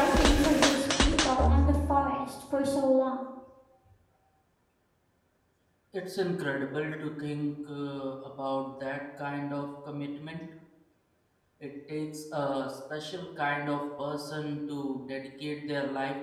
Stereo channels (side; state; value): both; identical; correlation 1.00